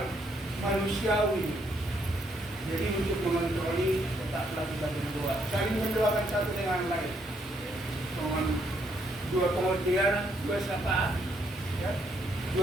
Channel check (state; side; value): normal; both; correlation 0.73